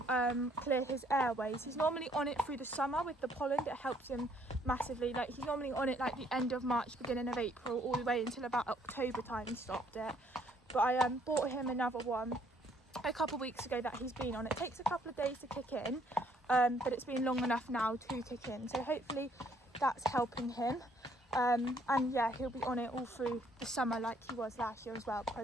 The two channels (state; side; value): normal; both; correlation 0.65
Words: clear his airways. He's normally on it through the summer with the pollen. It helps him massively. Like, he's normally on it like the end of March, beginning of April, all the way until about October time he stopped it. But I bought him another one a couple of weeks ago that he's been on. It takes a couple of days to kick in, but it's been long enough now to kick in. So hopefully that's helping him. And yeah, he'll be on it all through the summer like he was last year as well,